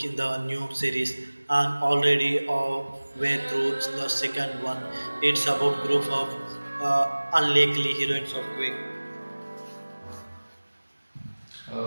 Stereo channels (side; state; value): both; inverted; correlation -1.00